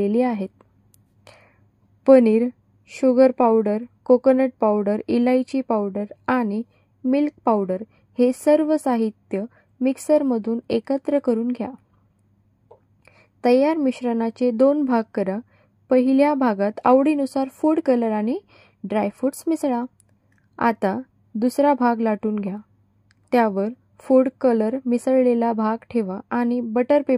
आहेत. Paneer, sugar powder, coconut powder, इलायची पावडर आणि मिल्क पावडर हे सर्व साहित्य मिक्सरमधून एकत्र करून घ्या. तयार मिश्रणाचे 2 भाग करा. पहिल्या भागात आवडीनुसार फूड कलर आणि ड्रायफ्रूट्स मिसळा. आता दुसरा भाग लाटून घ्या. त्यावर फूड कलर मिसळलेला भाग ठेवा आणि बटर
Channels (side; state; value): both; identical; correlation 1.00